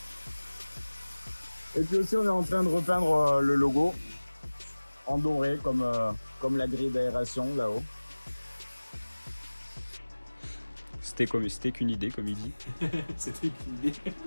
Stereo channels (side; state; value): both; inverted; correlation -1.00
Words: Et puis aussi, on est en train de repeindre le logo en doré comme la grille d'aération là-haut. C'était qu'une idée, comme il dit. C'était une idée.